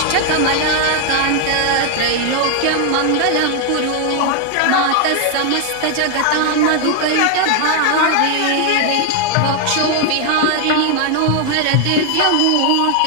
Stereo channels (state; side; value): different; both; correlation 0.01